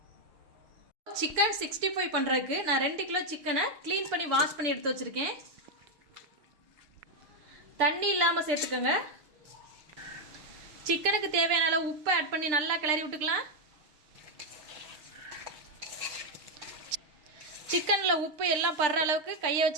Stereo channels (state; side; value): late; left; 6.7 ms